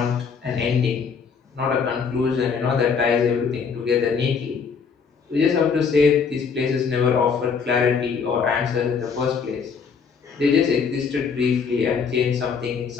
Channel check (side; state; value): right; quieter; 5.9 dB